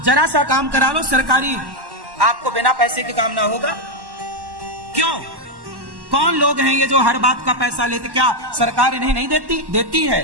जरा सा काम करा लो सरकारी, आपको बिना पैसे के काम ना होगा। क्यों? कौन लोग हैं ये जो हर बात का पैसा लेते? क्या सरकार इन्हें नहीं देती? देती है,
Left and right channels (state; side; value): late; left; 1.1 ms